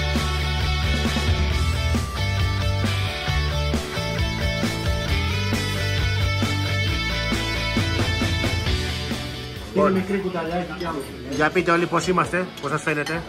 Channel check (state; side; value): identical; both; correlation 1.00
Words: Είναι μικρή κουταλιάκι κι άλλο. Για πείτε όλοι πώς είμαστε, πώς σας φαίνεται.